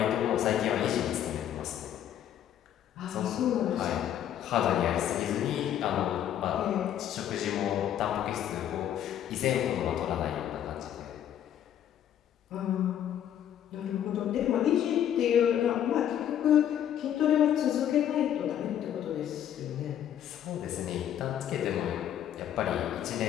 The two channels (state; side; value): quieter; right; 10.4 dB